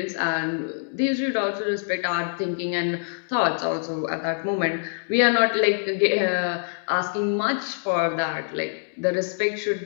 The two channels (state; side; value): silent; right; digital silence